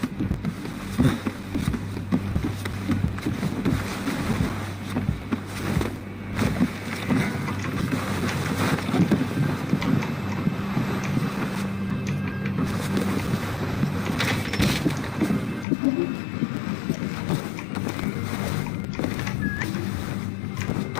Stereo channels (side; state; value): right; drops out; at 15.7 s